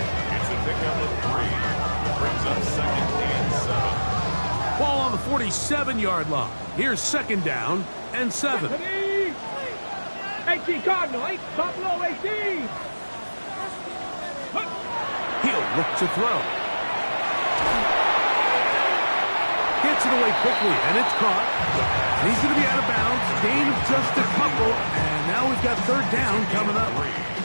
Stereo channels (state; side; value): inverted; both; correlation -1.00